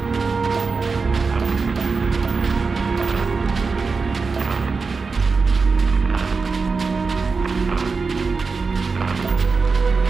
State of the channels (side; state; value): left; quieter; 4.6 dB